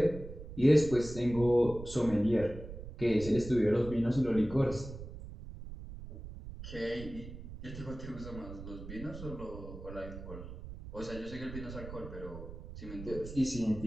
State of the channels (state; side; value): noise; right; rumble, 11 dB below the sound